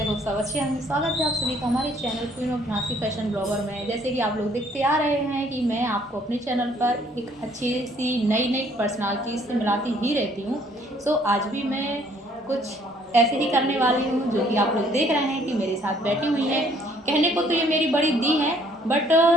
होप सब अच्छे हैं। स्वागत है आप सभी का हमारे channel queen of Nasi fashion blogger में। जैसे कि आप लोग देखते आ रहे हैं कि मैं आपको अपने चैनल पर एक अच्छी सी नई नई पर्सनालिटी से मिलाती ही रहती हूँ। सो आज भी मैं कुछ ऐसे ही करने वाली हूँ जो कि आप लोग देख रहे हैं कि मेरे साथ बैठी हुई है। कहने को तो ये मेरी बड़ी दी है, बट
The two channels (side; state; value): both; normal; correlation 0.61